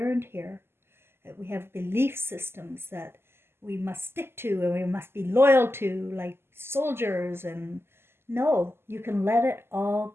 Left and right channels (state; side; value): late; left; 0.12 ms